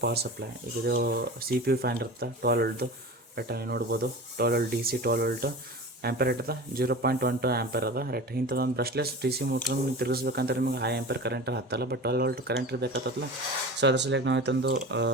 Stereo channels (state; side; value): normal; both; correlation 0.33